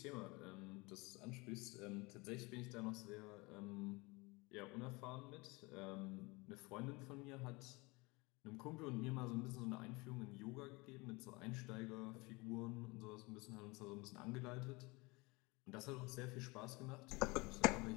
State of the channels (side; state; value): right; quieter; 25.4 dB